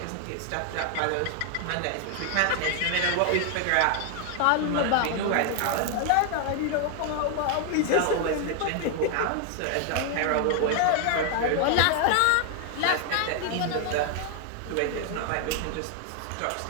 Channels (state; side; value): different; both; correlation 0.00